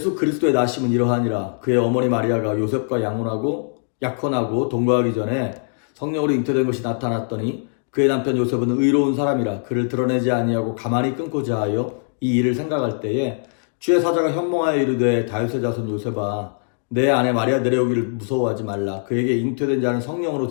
그리스도의 나심은 이러하니라. 그의 어머니 마리아가 요셉과 약혼하고 동거하기 전에 성령으로 잉태된 것이 나타났더니 그의 남편 요셉은 의로운 사람이라 그를 드러내지 아니하고 가만히 끊고자 하여 이 일을 생각할 때에 주의 사자가 현몽하여 이르되 다윗의 자손 요셉아, 내 아내 마리아 내려오기를 무서워하지 말라. 그에게 잉태된 자는 성령으로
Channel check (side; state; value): right; silent; digital silence